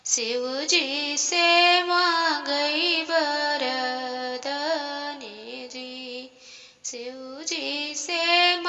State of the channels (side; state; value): both; identical; correlation 1.00